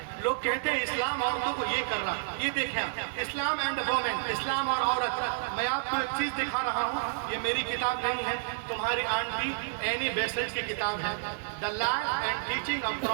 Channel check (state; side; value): silent; left; 58 dB below the other